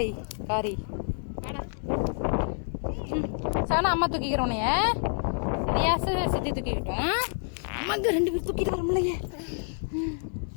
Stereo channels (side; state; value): right; silent; 59 dB below the other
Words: காரி? சானா அம்மா தூக்கிக்கிறோனைய சித்தி தூக்கிக்கிட்டோம். அம்மாங்க 2 பேரும் தூக்கிட்டு வரமுலையே.